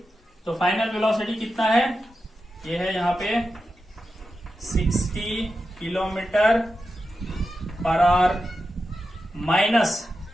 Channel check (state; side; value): normal; both; correlation 0.90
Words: तो फाइनल वेलोसिटी कितना है, ये है यहाँ पे 60 kilometre per our, minus